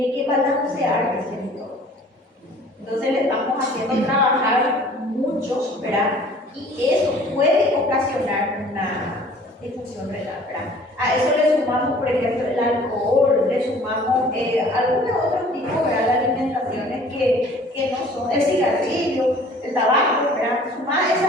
que balancear ese entorno. Entonces le estamos haciendo trabajar mucho, ¿verdad? Y eso puede ocasionar una disfunción renal, ¿verdad? A eso le sumamos, por ejemplo, el alcohol, le sumamos algunos otros tipos, ¿verdad?, de alimentaciones que no son el cigarrillo, el tabaco, ¿verdad? Sumar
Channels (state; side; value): normal; both; correlation 0.51